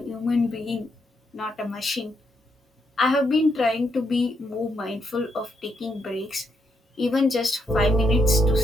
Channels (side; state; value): both; normal; correlation 0.78